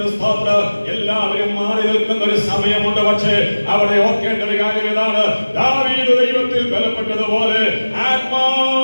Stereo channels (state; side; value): inverted; both; correlation -1.00